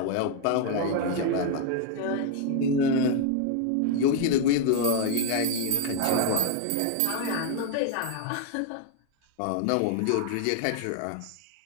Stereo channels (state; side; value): different; both; correlation 0.01